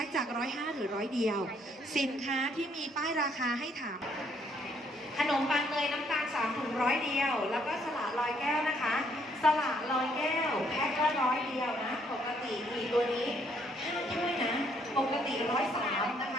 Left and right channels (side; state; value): both; normal; correlation 0.68